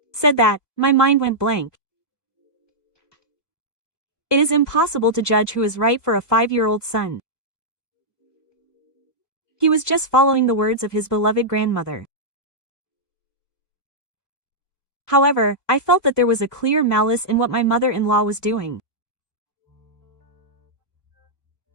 said that, my mind went blank. It is impossible to judge who is right for a 5-year-old son. He was just following the words of his beloved grandmother. However, I felt that there was a clear malice in what my mother-in-law was doing.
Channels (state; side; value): late; right; 1.2 ms